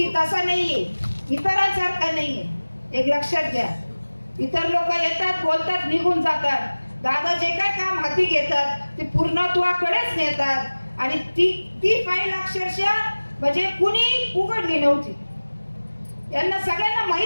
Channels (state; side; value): inverted; both; correlation -1.00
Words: तसा नाहीये, इतरांसारखा नाहीये. एक लक्षात घ्या, इतर लोक येतात बोलतात निघून जातात. दादा जे काय काम हाती घेतात ते पूर्णत्वाकडेच नेतात आणि ती फाईल अक्षरशः म्हणजे कुणी उघडली नव्हती. यांना सगळ्यांना